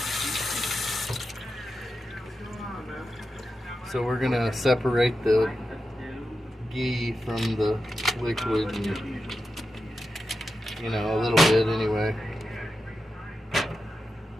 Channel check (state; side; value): normal; both; correlation 0.90